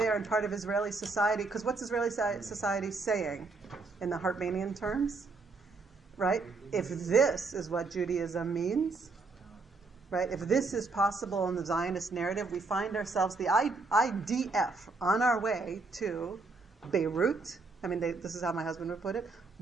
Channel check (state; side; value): quieter; left; 3.9 dB